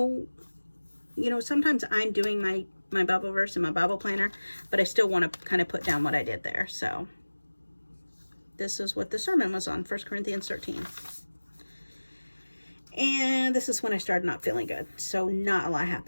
you know, sometimes I'm doing my Bible verse in my Bible planner, but I still want to kind of put down what I did there. So this is what the sermon was on, 1 Corinthians 13. And this is when I started not feeling good. So not a lot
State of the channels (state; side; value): inverted; both; correlation -1.00